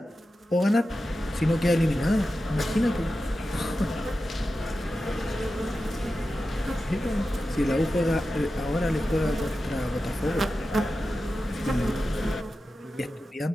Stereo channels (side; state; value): both; normal; correlation 0.92